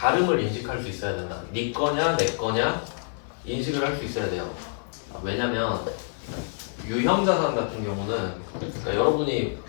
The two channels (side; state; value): right; silent; 60 dB below the other